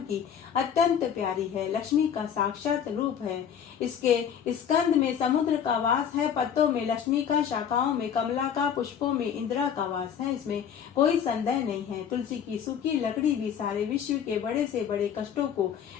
की अत्यंत प्यारी है, लक्ष्मी का साक्षात रूप है। इसके स्कंद में समुद्र का वास है, पत्तों में लक्ष्मी का, शाखाओं में कमला का, पुष्पों में इंदिरा का वास है, इसमें कोई संदेह नहीं है। तुलसी की सूखी लकड़ी भी सारे विश्व के बड़े से बड़े कष्टों को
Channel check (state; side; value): quieter; right; 8.2 dB